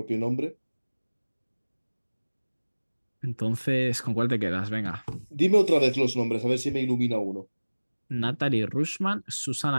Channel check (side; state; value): both; inverted; correlation -1.00